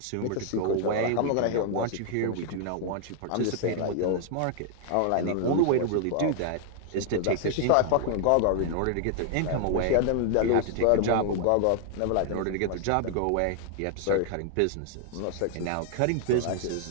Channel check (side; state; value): both; different; correlation 0.00